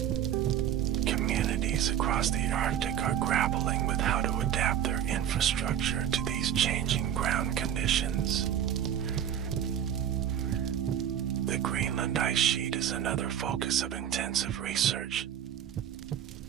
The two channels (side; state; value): left; quieter; 9.8 dB